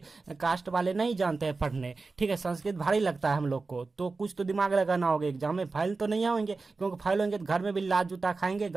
कास्ट वाले नहीं जानते हैं पढ़ने, ठीक है। संस्कृत भारी लगता है हम लोग को, तो कुछ तो दिमाग लगाना होगा, एग्जाम में फाइल तो नहीं होंगे, क्योंकि फाइल होंगे तो घर में भी लात जूता खाएंगे,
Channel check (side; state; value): left; quieter; 4.0 dB